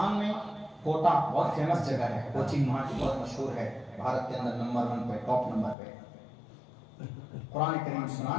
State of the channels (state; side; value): drops out; right; at 5.8 s